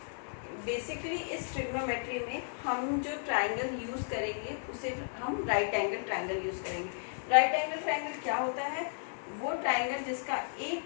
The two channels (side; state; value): right; silent; digital silence